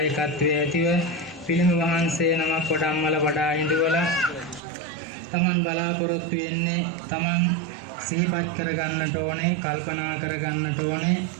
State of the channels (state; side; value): drops out; left; at 4.6 s